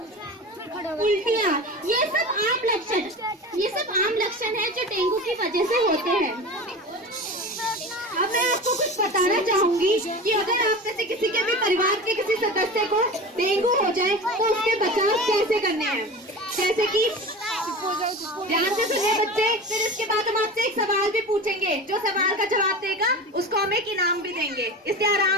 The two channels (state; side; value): normal; both; correlation 0.31